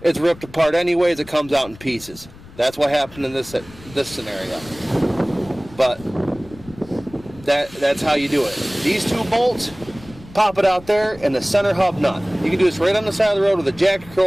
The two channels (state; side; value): noise; left; rumble, 20 dB below the sound